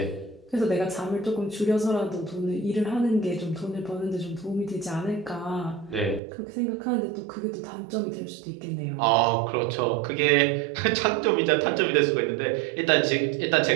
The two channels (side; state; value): left; drops out; at 6.2 s